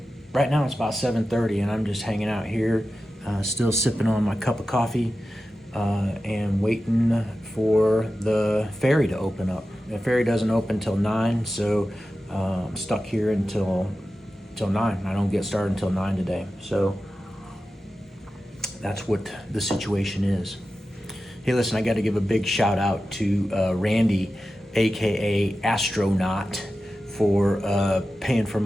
right now it's about 7:30, and I'm just hanging out here, still sipping on my cup of coffee, and waiting for the ferry to open up. The ferry doesn't open till 9, so I'm stuck here until 9. I don't get started until 9 today. So that's what the situation is. Hey, listen, I got to give a big shout out to Randy, aka Astronaut, for paying for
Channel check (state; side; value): normal; both; correlation 0.93